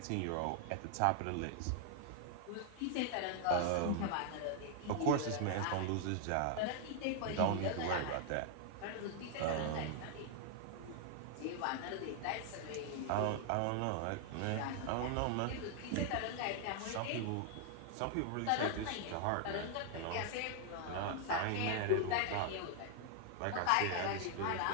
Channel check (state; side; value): different; both; correlation 0.00